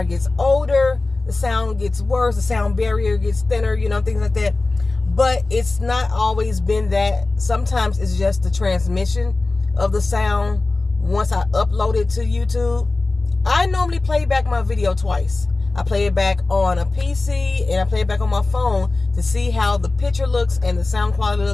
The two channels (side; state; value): right; quieter; 3.3 dB